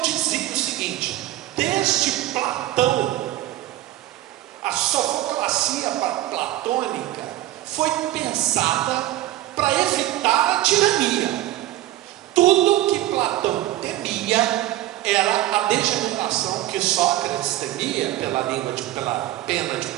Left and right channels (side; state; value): left; quieter; 14.9 dB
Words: o seguinte: desde Platão, a sofoclacia platônica foi pensada para evitar a tirania. Tudo que Platão temia era a degeneração que Sócrates temia pela pena de